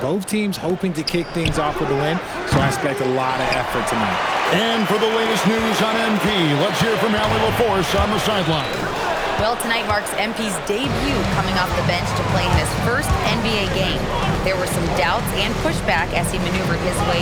Both teams hoping to kick things off with a win, so I expect a lot of effort tonight. And for the latest news on MP, let's hear from Allie LaForce on the sideline. Well, tonight marks MP's debut coming off the bench to play in his first NBA game. There were some doubts and pushback as he maneuvered his way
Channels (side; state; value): both; identical; correlation 1.00